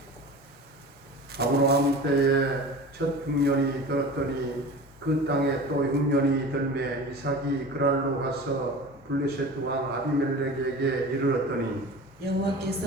아브라함 때에 첫 흉년이 들었더니 그 땅에 또 흉년이 들매 이삭이 그랄로 가서 블레셋 왕 아비멜렉에게 이르렀더니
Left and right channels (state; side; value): normal; both; correlation 0.36